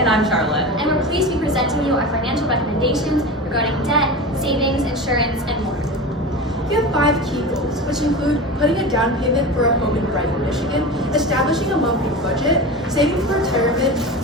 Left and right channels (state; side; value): normal; both; correlation 0.28